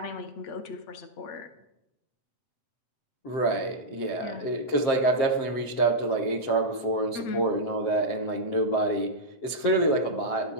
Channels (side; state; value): right; late; 7.6 ms